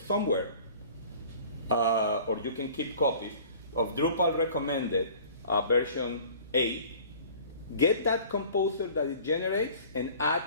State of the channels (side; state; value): both; inverted; correlation -0.47